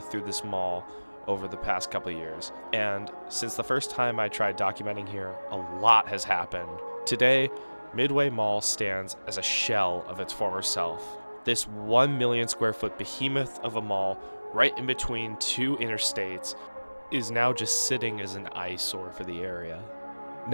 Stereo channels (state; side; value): inverted; both; correlation -1.00